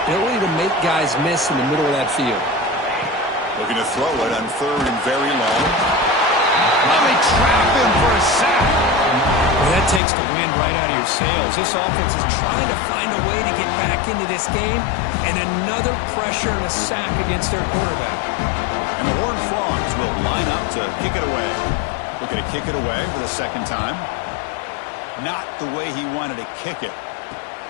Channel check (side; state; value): right; drops out; at 10.0 s